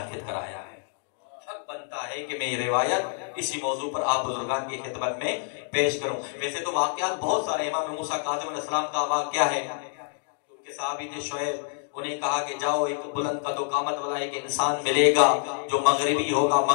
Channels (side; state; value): right; silent; 60 dB below the other